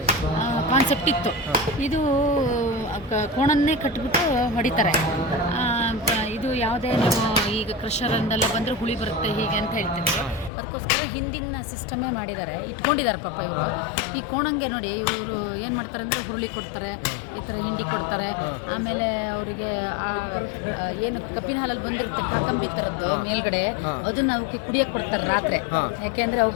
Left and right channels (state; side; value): drops out; right; at 10.5 s